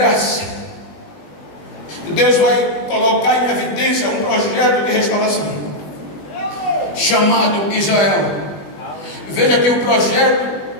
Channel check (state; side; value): late; right; 20 ms